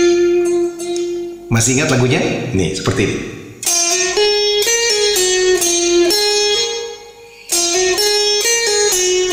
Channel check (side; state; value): both; identical; correlation 1.00